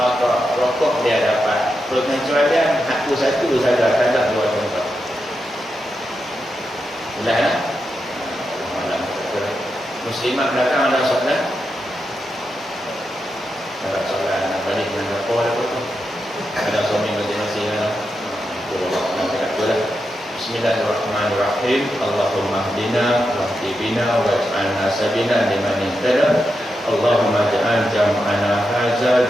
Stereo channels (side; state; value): both; normal; correlation 0.87